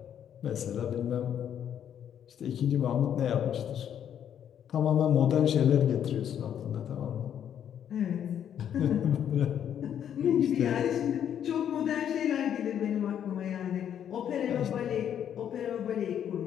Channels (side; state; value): right; quieter; 9.4 dB